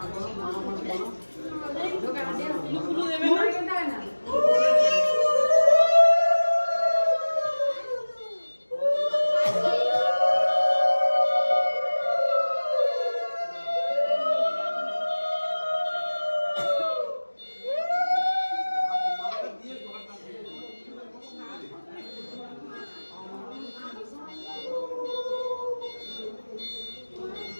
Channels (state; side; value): inverted; both; correlation -1.00